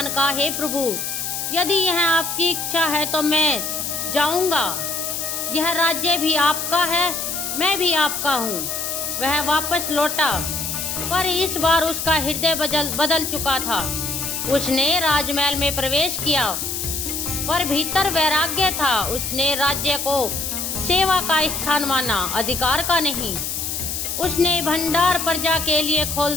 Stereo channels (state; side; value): noise; left; hiss, 3 dB below the sound